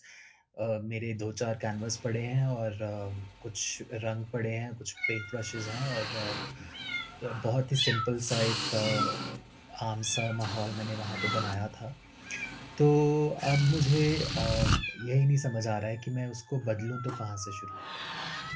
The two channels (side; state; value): both; identical; correlation 1.00